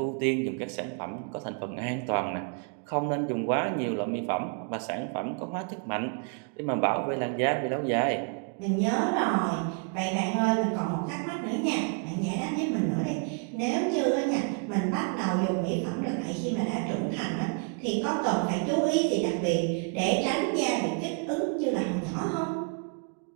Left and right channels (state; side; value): quieter; left; 37.3 dB